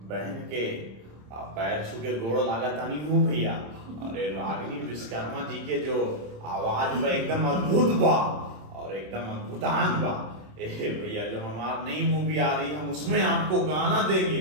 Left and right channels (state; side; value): late; left; 27 ms